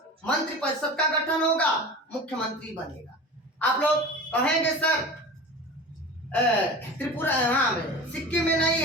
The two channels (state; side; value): normal; both; correlation 0.33